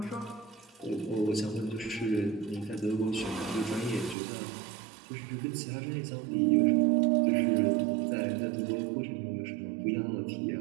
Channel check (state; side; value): drops out; left; at 4.2 s